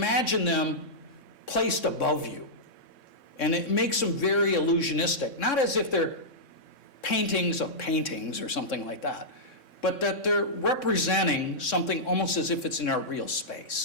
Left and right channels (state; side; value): late; right; 3.6 ms